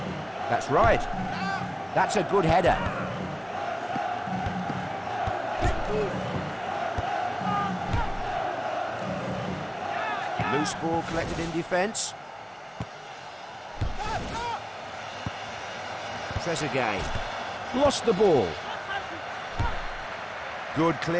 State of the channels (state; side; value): identical; both; correlation 1.00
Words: That's right. That's a good header. Loose ball collected in defence. Trezeguet. Lost the ball. Good